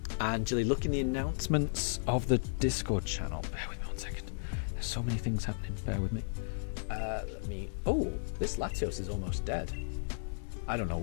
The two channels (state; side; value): silent; right; digital silence